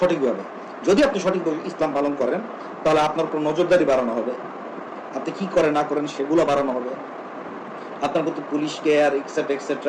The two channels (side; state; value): both; identical; correlation 1.00